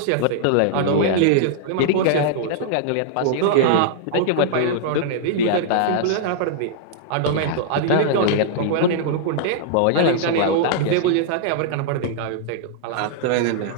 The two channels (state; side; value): different; both; correlation -0.01